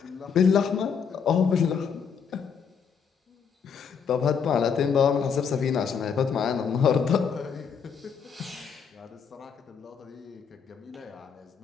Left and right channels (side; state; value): right; quieter; 6.7 dB